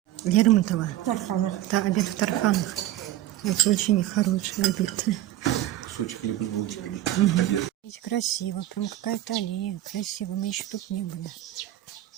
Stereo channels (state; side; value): quieter; left; 14.0 dB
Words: Лермонтова. Тарханов. Да, обед в Тарханах. Это очень хороший обед. Кусочек хлеба с булочками. Обед. Красиво, прям какая-то аллея. Красиво, мы еще тут не были.